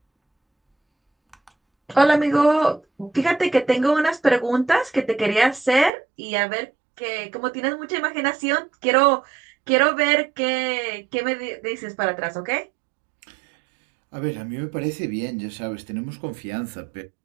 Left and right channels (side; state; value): left; drops out; at 5.9 s